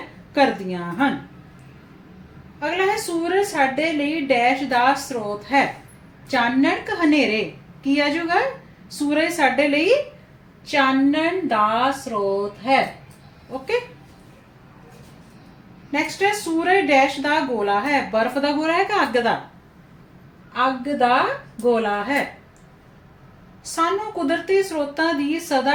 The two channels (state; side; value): identical; both; correlation 1.00